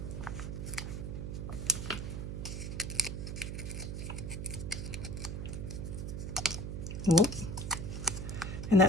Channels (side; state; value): right; noise; hum, 4 dB below the sound